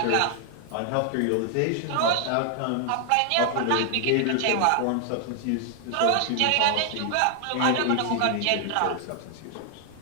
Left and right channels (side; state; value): both; different; correlation 0.00